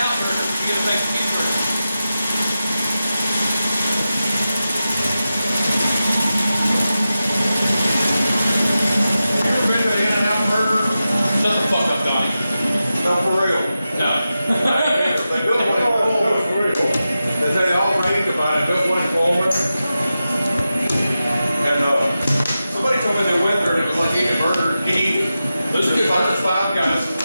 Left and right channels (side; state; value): both; inverted; correlation -0.92